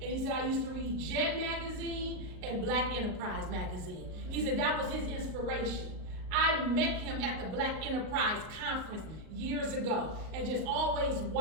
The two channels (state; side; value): late; left; 38 ms